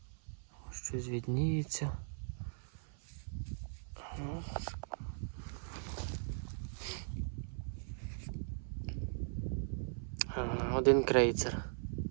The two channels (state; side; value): silent; left; 52 dB below the other